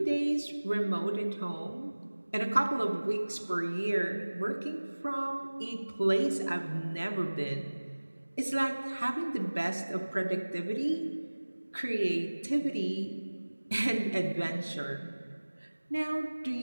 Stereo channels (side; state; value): both; inverted; correlation -1.00